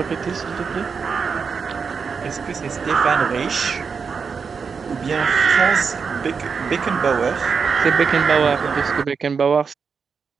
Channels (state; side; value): quieter; left; 5.7 dB